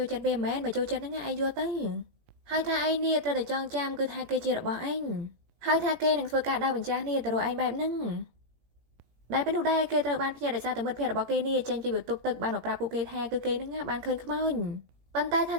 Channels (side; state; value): left; late; 17 ms